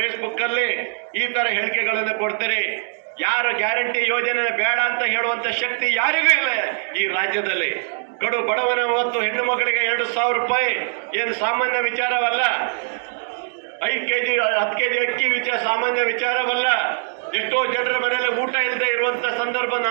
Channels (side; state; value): left; silent; digital silence